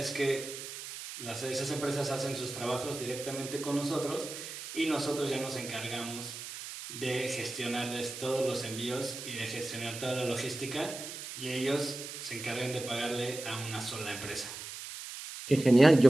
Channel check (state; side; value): noise; right; hiss, 9 dB below the sound